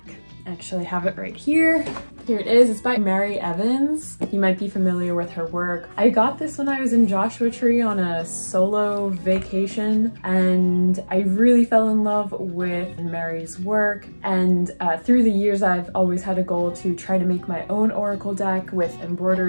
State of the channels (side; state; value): both; inverted; correlation -1.00